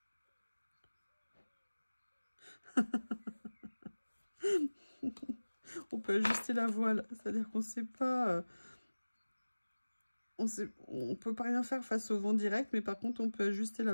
on peut ajuster la voile. C'est-à-dire qu'on ne sait pas... on peut pas rien faire face au vent direct, mais par contre, on peut ajuster la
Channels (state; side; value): inverted; both; correlation -1.00